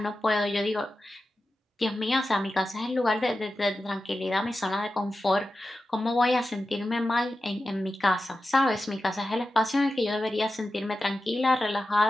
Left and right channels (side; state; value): both; normal; correlation 0.92